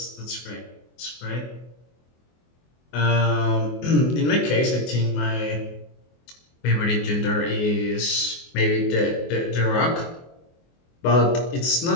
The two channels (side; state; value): right; late; 24 ms